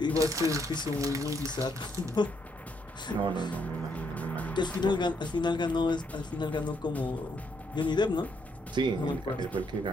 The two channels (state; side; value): normal; both; correlation 0.74